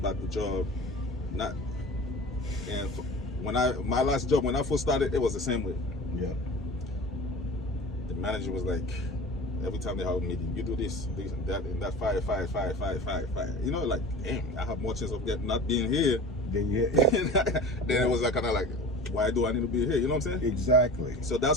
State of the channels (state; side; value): normal; both; correlation 0.37